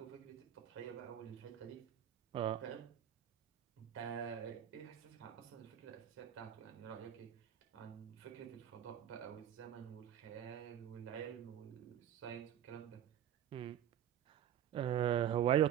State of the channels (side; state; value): left; quieter; 10.4 dB